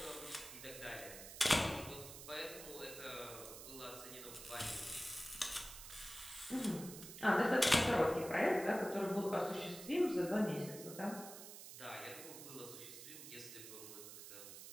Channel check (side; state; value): right; noise; hiss, 12 dB below the sound